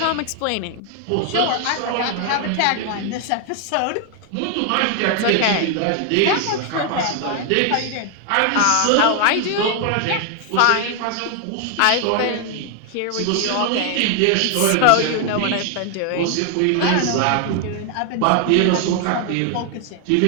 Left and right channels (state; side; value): different; both; correlation 0.00